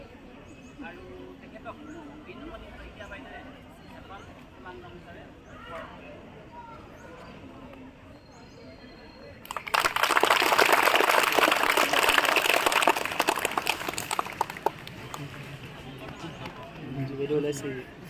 আৰু তেখেতক বিনুমণি শইকীয়া বাইদেৱে এখন কিমান গামোচাৰে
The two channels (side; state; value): both; identical; correlation 1.00